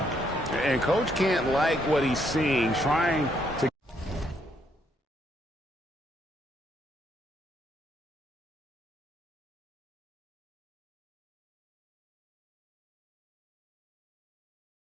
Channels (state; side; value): normal; both; correlation 0.73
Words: And coach can't like what he's seeing, trying